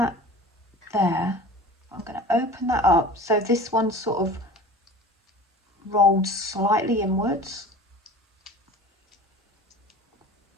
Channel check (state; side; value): normal; both; correlation 0.39